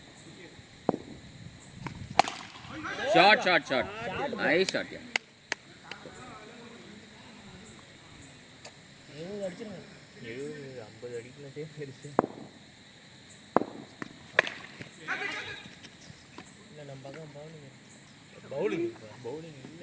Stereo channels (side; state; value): both; identical; correlation 1.00